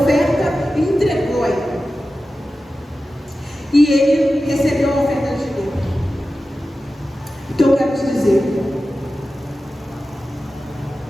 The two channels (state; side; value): normal; both; correlation 0.94